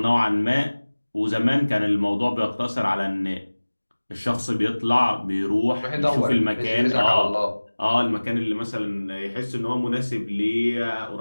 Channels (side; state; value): both; inverted; correlation -1.00